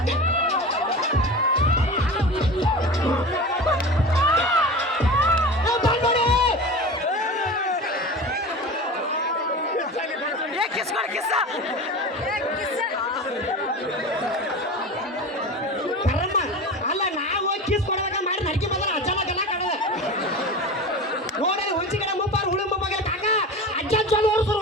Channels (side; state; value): both; normal; correlation 0.31